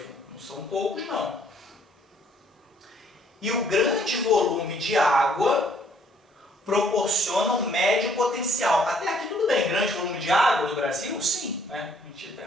não são poucos não. E o grande volume de água proporciona um médio potencial. Até aqui tudo bem, grande volume de água no Brasil? Sim, né? A gente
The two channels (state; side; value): normal; both; correlation 0.64